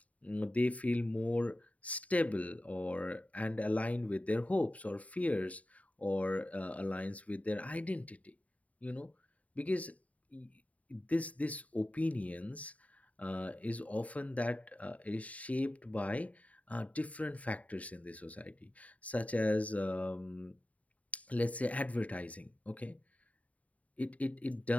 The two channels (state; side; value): late; right; 0.069 ms